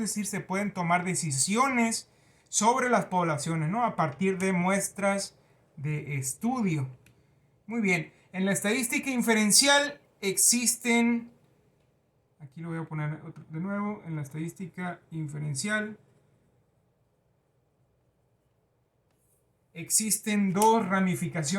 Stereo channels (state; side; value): identical; both; correlation 1.00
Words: se pueden tomar decisiones sobre las poblaciones, ¿no? A partir de muestras de estudio. Muy bien, en la estadística inferencial existen, aquí lo voy a poner de nuevo, en la estadística inferencial existen dos